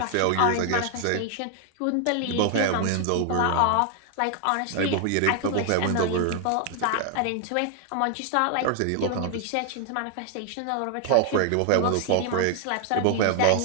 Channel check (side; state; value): both; different; correlation 0.00